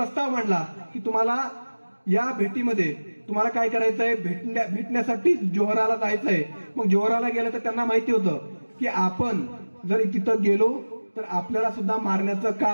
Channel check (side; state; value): both; inverted; correlation -1.00